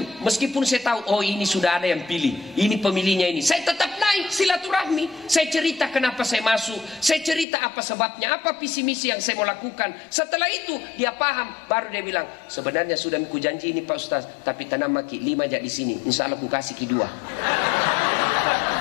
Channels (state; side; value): drops out; right; at 7.5 s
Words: meskipun saya tahu, oh ini sudah ada yang pilih, ini pemilihnya ini, saya tetap naik silaturahmi. Saya cerita kenapa saya masuk, saya cerita apa sebabnya, apa visi misi yang saya mau lakukan. Setelah itu dia paham, baru dia bilang, sebenarnya sudah aku janji ini Pak Ustaz, tapi tanam maki 5 aja di sini, insya Allah aku kasih ki 2.